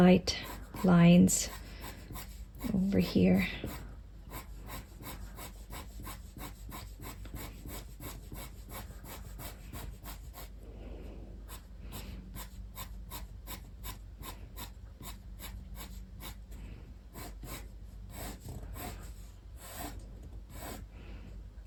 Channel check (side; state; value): both; identical; correlation 1.00